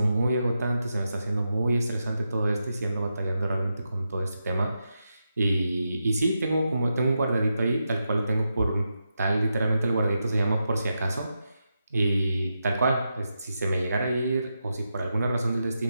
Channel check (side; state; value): both; inverted; correlation -0.87